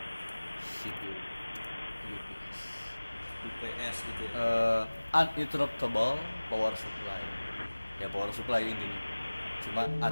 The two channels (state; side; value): inverted; both; correlation -1.00